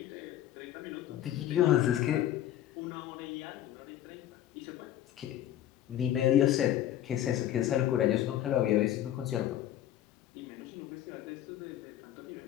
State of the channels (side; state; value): right; quieter; 12.0 dB